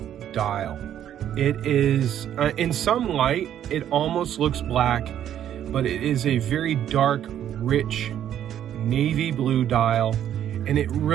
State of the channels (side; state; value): left; quieter; 10.5 dB